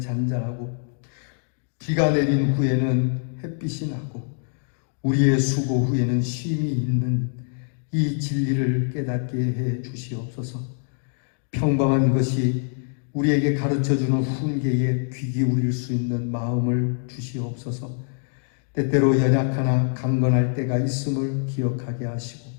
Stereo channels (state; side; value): silent; right; 62 dB below the other